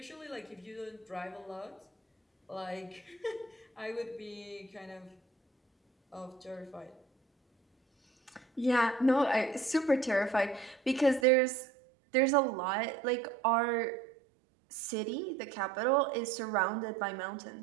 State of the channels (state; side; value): drops out; left; at 11.2 s